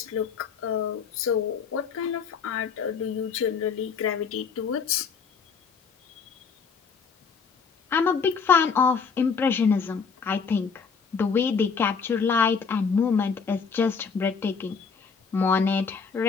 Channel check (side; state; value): right; quieter; 5.7 dB